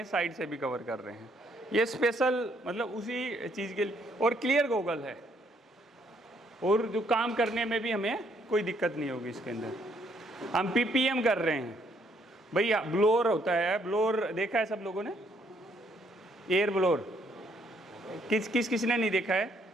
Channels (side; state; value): both; normal; correlation 0.69